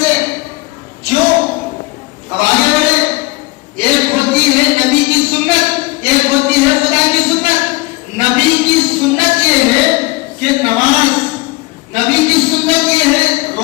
سے۔ کیوں؟ اب آگے بڑھے۔ ایک ہوتی ہے نبی کی سنت، ایک ہوتی ہے خدا کی سنت۔ نبی کی سنت یہ ہے کہ نماز، نبی کی سنت یہ ہے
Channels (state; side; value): quieter; right; 23.6 dB